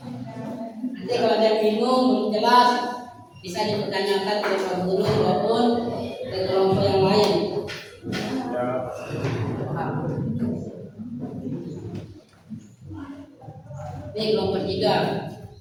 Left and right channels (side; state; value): both; identical; correlation 1.00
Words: Nanti kalau ada yang bingung belum jelas bisa dipertanyakan ke Pak Guru maupun ke kelompok yang lain. Ini kelompok